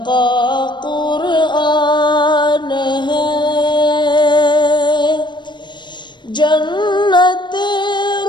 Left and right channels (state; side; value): late; right; 0.22 ms